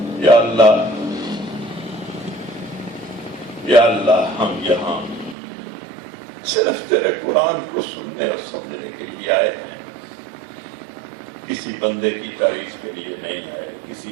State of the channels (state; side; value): drops out; left; at 5.4 s